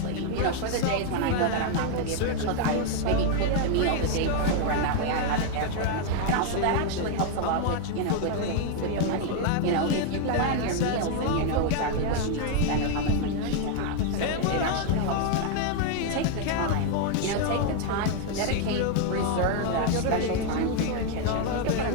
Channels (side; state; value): both; different; correlation 0.01